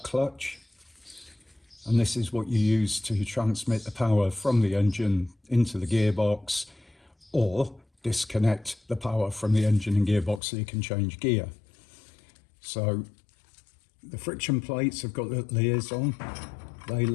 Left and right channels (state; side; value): drops out; right; at 10.4 s